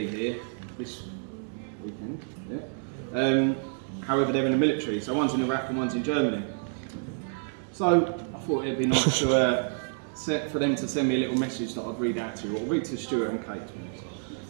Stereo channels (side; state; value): left; silent; 59 dB below the other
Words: here this weekend. Yeah. However, they're in the military, so one's in Iraq and one's in Germany. So I thought it'd be nice to for them to send me a little message that I'd read out to you. I'll read to Stuart and Kate.